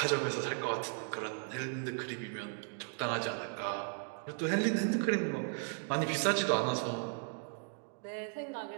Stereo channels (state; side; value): silent; left; 54 dB below the other